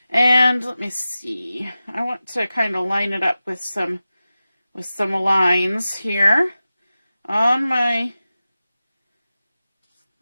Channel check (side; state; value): both; inverted; correlation -0.94